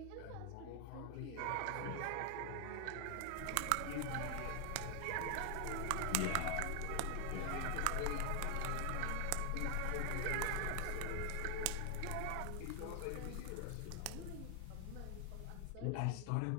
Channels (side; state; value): both; different; correlation 0.00